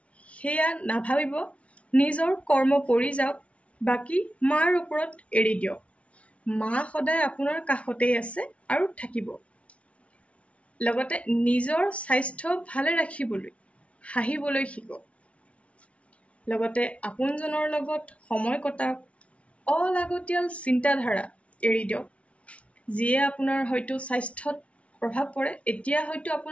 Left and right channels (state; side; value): late; right; 0.063 ms